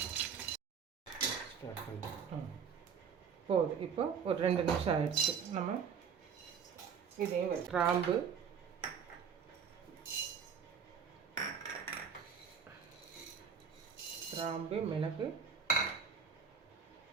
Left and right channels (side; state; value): left; quieter; 6.8 dB